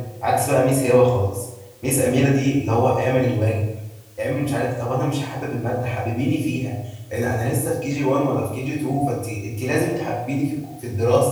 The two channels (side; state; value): both; identical; correlation 1.00